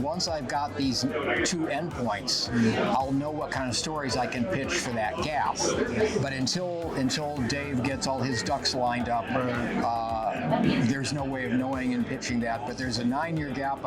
once I've got these two endpoints, I'll know what kind of stories I can pitch for that gap. But until Dave gets all his ducks lined up, there's no way of knowing and pitching that. But there's a 9-year gap.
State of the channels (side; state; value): both; identical; correlation 1.00